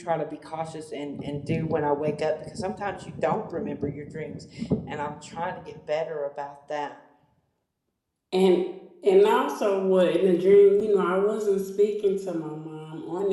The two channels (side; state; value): both; identical; correlation 1.00